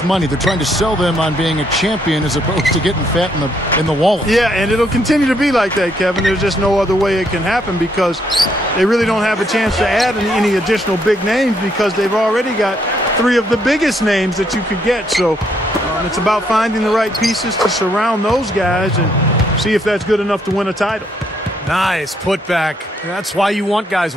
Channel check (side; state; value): both; normal; correlation 0.72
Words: money. They're trying to sell them on being a champion as opposed to getting fat in the wallet. Yeah, and it'll continue to be like that, Kevin. There's just no other way it can happen because they really don't have a chance to add any additional big names because they've already got 3 of the biggest names that you could get. So it's about finding the right pieces to surround those guys and see if that's good enough to win a title. Nice putback. That's why you want guys